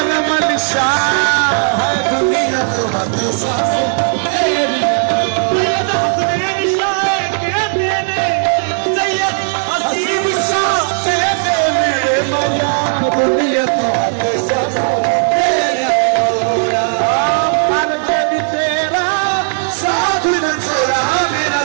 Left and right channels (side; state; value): left; silent; 69 dB below the other